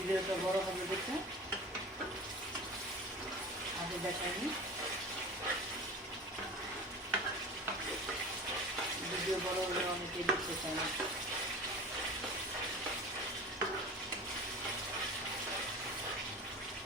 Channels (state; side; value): normal; both; correlation 0.36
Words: বড় হবে দেখে আগে দেখাইনি, ভিডিও বড় হলে অনেকেই দেখতে চায় না।